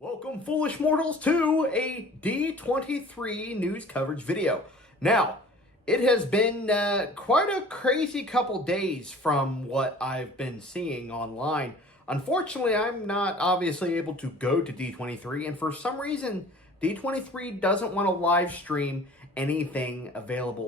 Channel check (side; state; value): both; normal; correlation 0.47